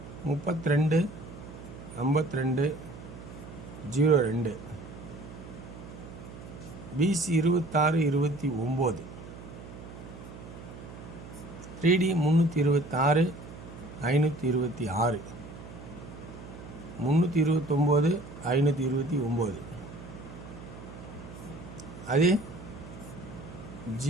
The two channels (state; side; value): noise; right; hum, 14 dB below the sound